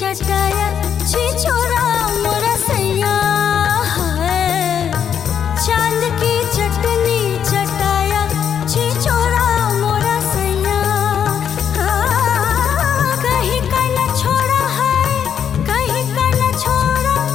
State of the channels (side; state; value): right; quieter; 8.3 dB